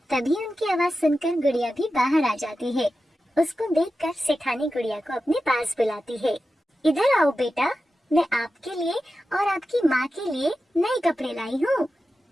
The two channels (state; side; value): normal; both; correlation 0.92